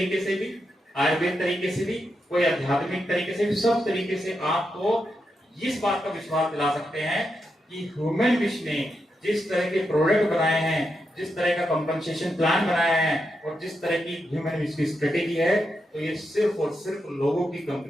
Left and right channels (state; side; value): normal; both; correlation 0.85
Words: से भी, आयुर्वेद तरीके से भी, कोई आध्यात्मिक तरीके से भी, सब तरीके से आपको इस बात का विश्वास दिला सकते हैं कि ह्यूमन विश ने जिस तरह के प्रोडक्ट बनाए हैं, जिस तरह का कंपनसेशन प्लान बनाया है, और जिस तरह की ह्यूमन विश की स्ट्रेटेजी है, तो ये सिर्फ और सिर्फ लोगों की